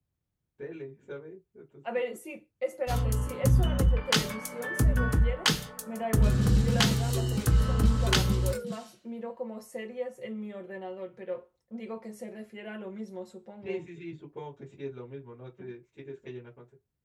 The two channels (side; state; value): both; identical; correlation 1.00